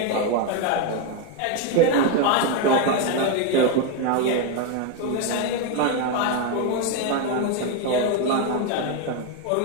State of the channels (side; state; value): both; different; correlation 0.02